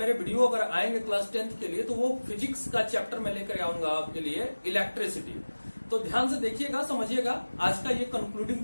वीडियो अगर आएंगे क्लास 10th के लिए तो वो फिजिक्स का चैप्टर में लेकर आऊंगा आपके लिए, इलेक्ट्रिसिटी। तो ध्यान से देखिएगा, समझिएगा। आज का ये कंक्लूडिंग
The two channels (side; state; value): both; inverted; correlation -1.00